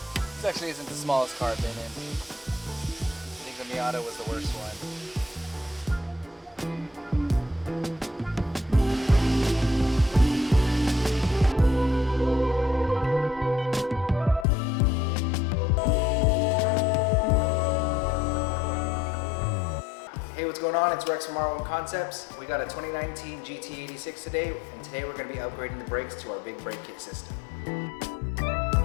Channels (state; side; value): drops out; right; at 14.5 s